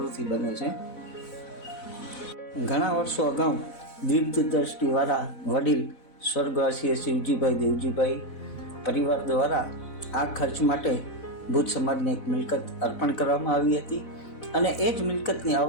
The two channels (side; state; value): right; late; 4.0 ms